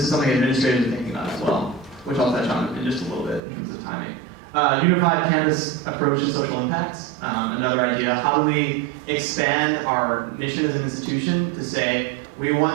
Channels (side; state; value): left; drops out; at 3.4 s